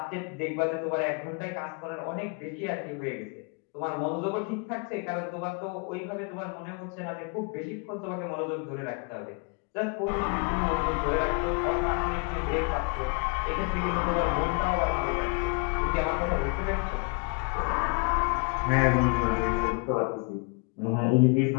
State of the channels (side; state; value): right; quieter; 35.3 dB